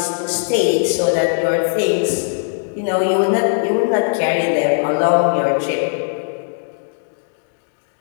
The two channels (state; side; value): silent; right; digital silence